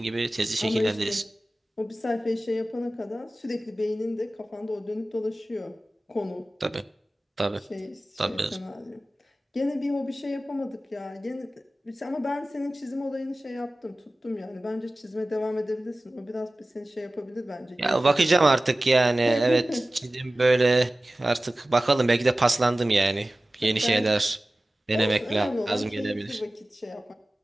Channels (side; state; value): both; normal; correlation 0.96